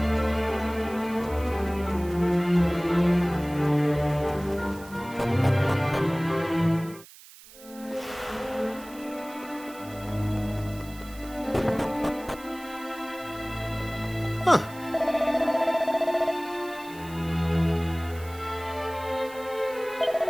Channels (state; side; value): noise; right; hiss, 20 dB below the sound